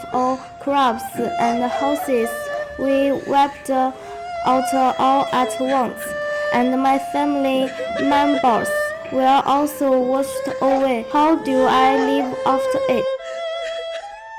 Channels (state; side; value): identical; both; correlation 1.00